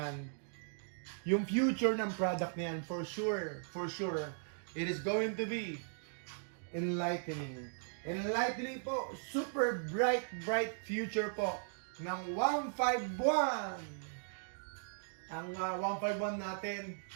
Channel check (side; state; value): left; silent; digital silence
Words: for sure, it is going to be enlightening. Enlightening po, super bright future po ng 151. Ang 151 natin,